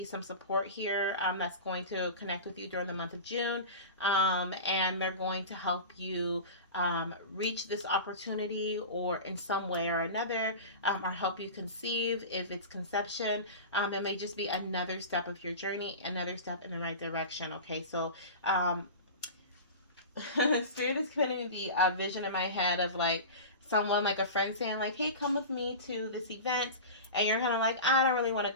some support here, that's going to connect with you during the month of June, and they're going to help you reach this opportunity or in some way or another, or help you conceive if it's conception. It may just be another step of your journey, another step in the right direction. Okay, so Spirit is putting the vision in my head of like someone, like a friend saying like, hey, come with me to this event, and you're kind of like, I don't really want to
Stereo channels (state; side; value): inverted; both; correlation -0.31